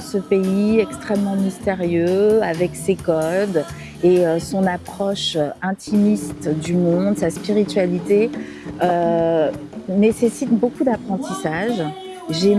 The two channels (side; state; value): both; identical; correlation 1.00